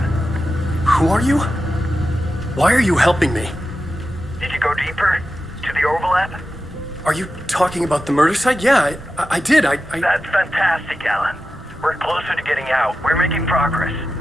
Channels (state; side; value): normal; both; correlation 0.91